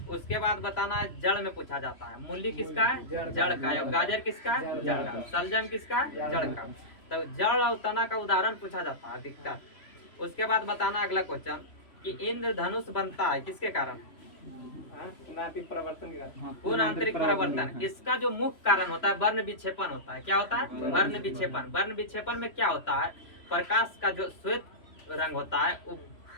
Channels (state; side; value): late; right; 3.0 ms